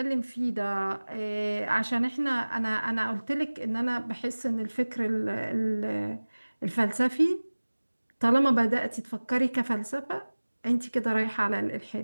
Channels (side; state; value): both; inverted; correlation -1.00